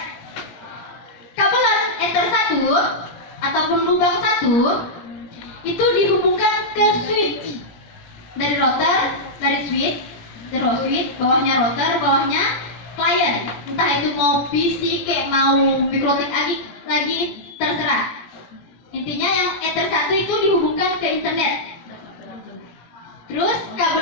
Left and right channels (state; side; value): late; right; 17 ms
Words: Kabelan Ether 1 ataupun ataupun lubang satu itu dihubungkan ke switch dari router, dari switch, bawahnya router, bawahnya klien. Entah itu mau PC kayak mau mikrotik lagi terserah. Intinya yang Ether 1 itu dihubungkan ke internet. Terus